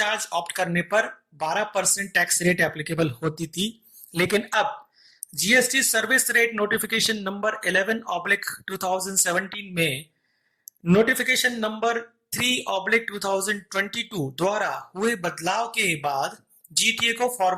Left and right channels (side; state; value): both; identical; correlation 1.00